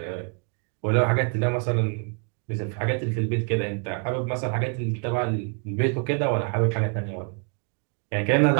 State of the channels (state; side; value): quieter; left; 38.9 dB